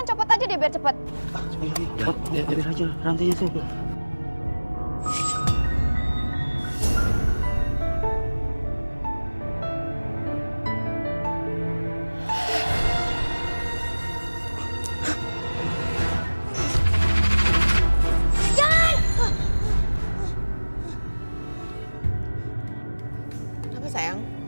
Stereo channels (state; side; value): inverted; both; correlation -1.00